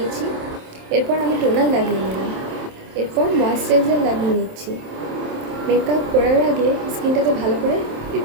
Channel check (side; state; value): left; late; 27 ms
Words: এরপর আমি টোনার লাগিয়ে নিলাম, এরপর ময়েশ্চারাইজার লাগিয়ে নিচ্ছি। মেকআপ করার আগে স্কিনটাকে ভালো করে